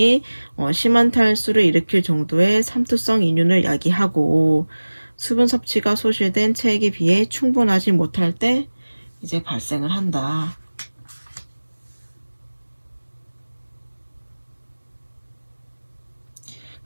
심한 탈수를 일으킬 정도의 삼투성 인륜을 야기하고, 수분 섭취가 소실된 체액에 비해 충분하지 못할 때 이제 발생을 한다.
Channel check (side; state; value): both; inverted; correlation -1.00